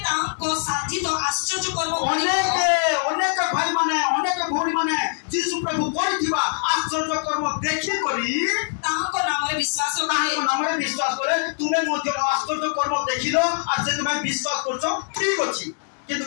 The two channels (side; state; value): right; silent; digital silence